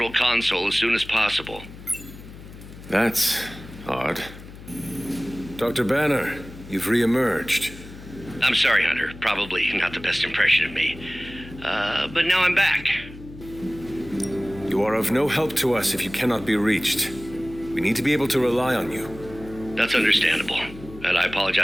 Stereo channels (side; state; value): left; noise; hum, 16 dB below the sound